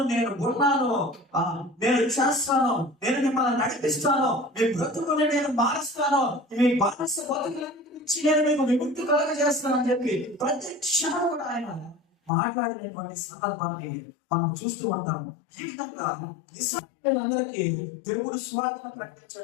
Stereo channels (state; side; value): drops out; right; at 12.3 s